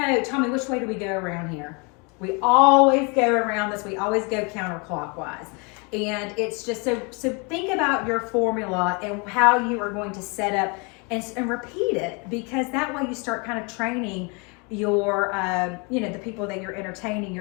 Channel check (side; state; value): right; quieter; 31.9 dB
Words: Tommy, which way do we go around here? We always go around this. We always go counterclockwise. And it's just, so think about your formula and how you are going to set up and repeat it, because that way you start kind of training your, the people that you're entertaining,